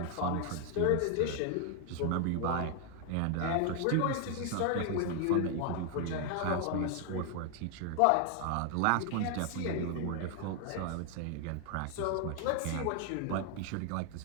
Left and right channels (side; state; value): both; different; correlation 0.00